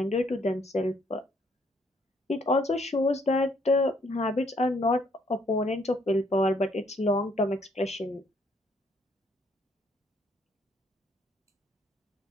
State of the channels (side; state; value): both; normal; correlation 0.67